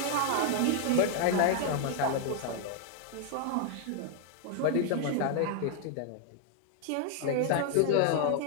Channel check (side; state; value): both; different; correlation 0.00